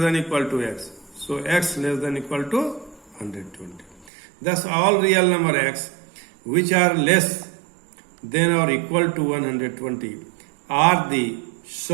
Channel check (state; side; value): drops out; left; at 4.0 s